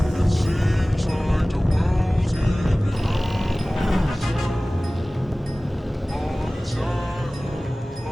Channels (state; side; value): normal; both; correlation 0.98